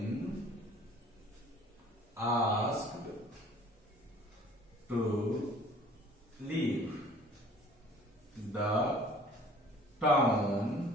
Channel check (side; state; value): both; normal; correlation 0.51